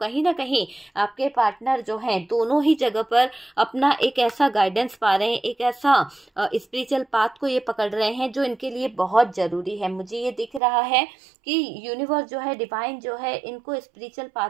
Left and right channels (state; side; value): drops out; left; at 10.6 s